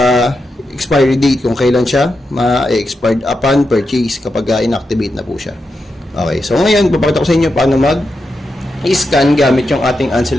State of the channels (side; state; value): both; normal; correlation 0.87